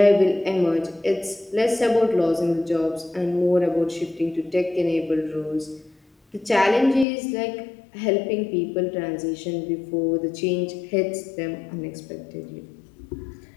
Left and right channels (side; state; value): right; drops out; at 7.1 s